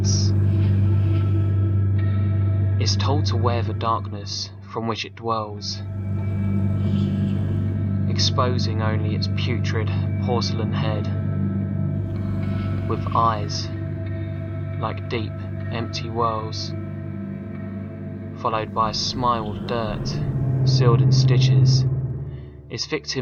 Is told to wear the darkness from which it dwells, exposing only its putrid porcelain head, with eyes like deep, empty wells, followed by a smile of dirt, sealed in stitches. Its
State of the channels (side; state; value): both; identical; correlation 1.00